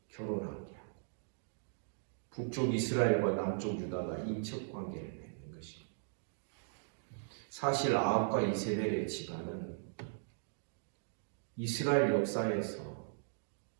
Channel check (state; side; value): silent; left; digital silence